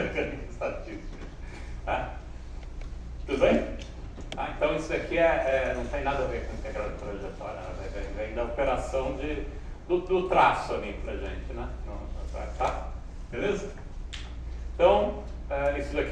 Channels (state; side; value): identical; both; correlation 1.00